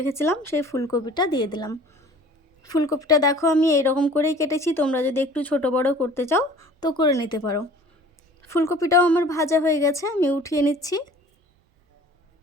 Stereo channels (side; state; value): both; normal; correlation 0.47